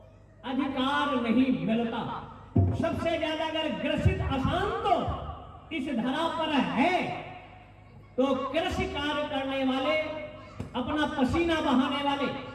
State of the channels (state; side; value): identical; both; correlation 1.00